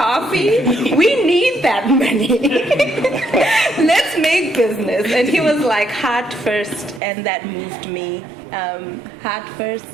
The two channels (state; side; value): drops out; left; at 7.0 s